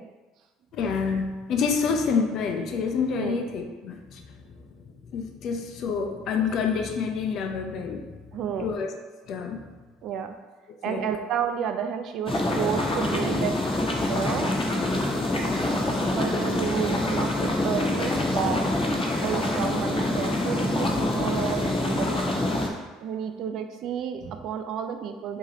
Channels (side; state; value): both; normal; correlation 0.62